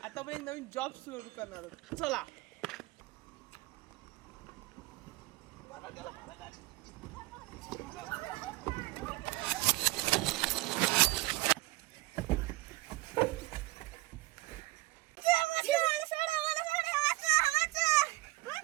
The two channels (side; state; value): left; quieter; 20.7 dB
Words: आता आपण एक नवीन जॉब सुरू करणार आहोत. चला.